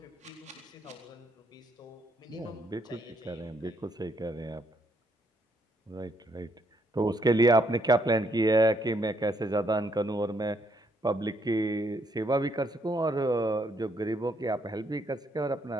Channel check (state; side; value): normal; both; correlation 0.72